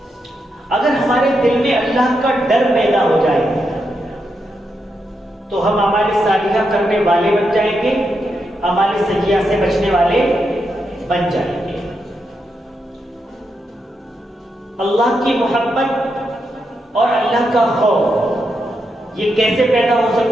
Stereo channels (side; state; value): both; normal; correlation 0.84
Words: اگر ہمارے دل میں اللہ کا ڈر پیدا ہو جائے تو ہم اعمال صالحہ کرنے والے بن جائیں گے، اعمال سیئہ سے بچنے والے بن جائیں گے۔ اللہ کی محبت اور اللہ کا خوف یہ کیسے پیدا ہو